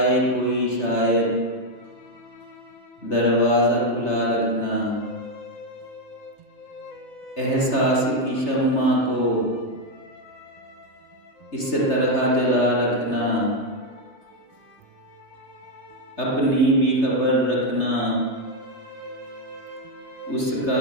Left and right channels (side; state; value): right; late; 3.3 ms